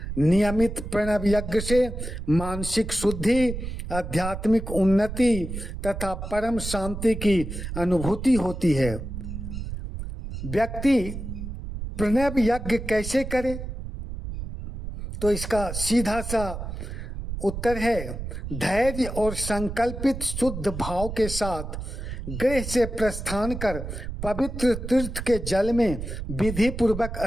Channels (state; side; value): noise; right; rumble, 7 dB below the sound